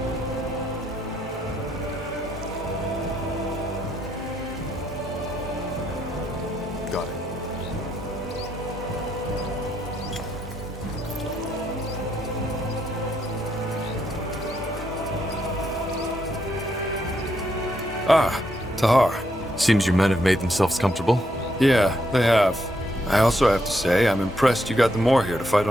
Got it. Ah, Tahar. Seems your men have made themselves comfortable. Yeah, they have. I also have to say, I'm impressed you got the Moor here to fight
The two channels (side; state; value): both; normal; correlation 0.77